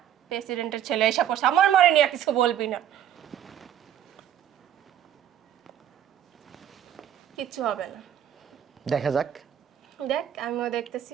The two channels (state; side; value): quieter; left; 10.4 dB